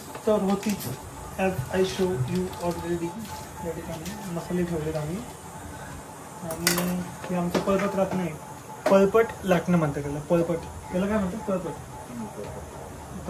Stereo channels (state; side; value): identical; both; correlation 1.00